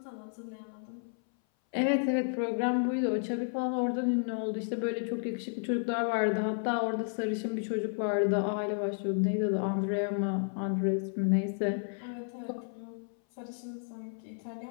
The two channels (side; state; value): right; silent; 56 dB below the other